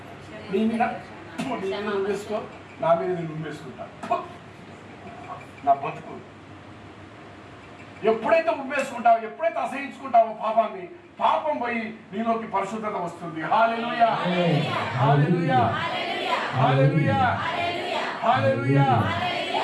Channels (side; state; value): both; identical; correlation 1.00